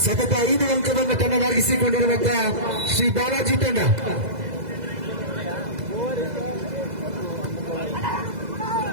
ಸತತ 5 ಅಂಕವನ್ನು ತನ್ನದಾಗಿಸಿಕೊಂಡಿರುವಂತಹ ಶ್ರೀ ಬಾಲಾಜಿ ತಂಡ.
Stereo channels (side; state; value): left; late; 2.0 ms